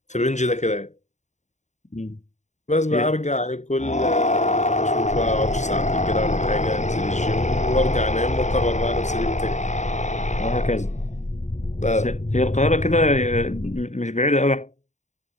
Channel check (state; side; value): late; right; 0.34 ms